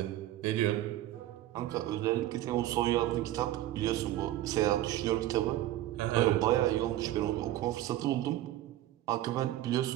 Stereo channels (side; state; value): left; quieter; 14.2 dB